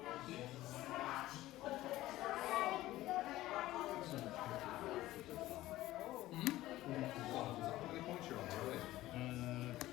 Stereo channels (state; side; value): quieter; right; 16.1 dB